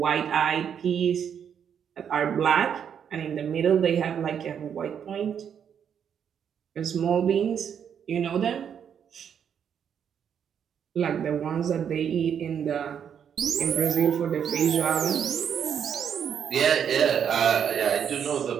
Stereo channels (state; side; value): quieter; left; 8.1 dB